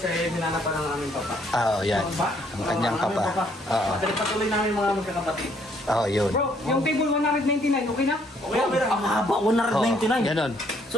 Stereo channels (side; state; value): both; normal; correlation 0.67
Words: ay hinanapan ng aming papa. Oo, yan. Ang kanyang papa. Oo. Patuloy namin mga magkakapatid. Oo, yun. Bro, yung table 199, okay na? Okay, pero ang haba, 199. Ganon.